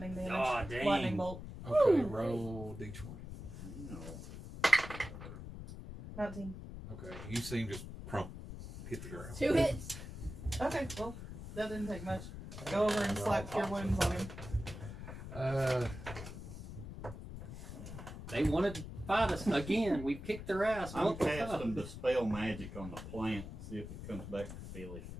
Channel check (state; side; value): noise; left; rumble, 10 dB below the sound